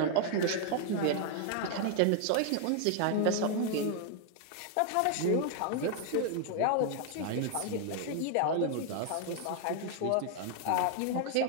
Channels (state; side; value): different; both; correlation 0.00